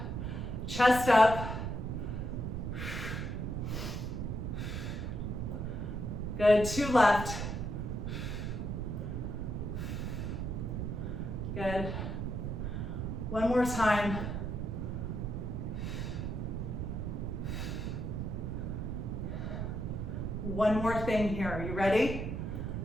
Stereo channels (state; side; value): noise; right; rumble, 3 dB below the sound